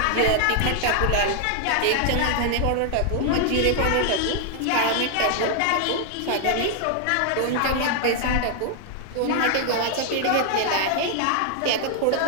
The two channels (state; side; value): different; both; correlation 0.00